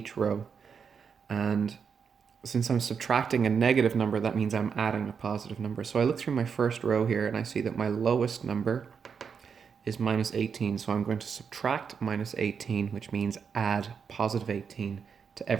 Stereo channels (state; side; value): quieter; left; 6.4 dB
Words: row. And since I'm subtracting a negative number, that means I'm adding a positive number. So I look through my first row here and I see that my lowest number is minus 18. So I'm going to subtract minus 18, which means add positive 18 to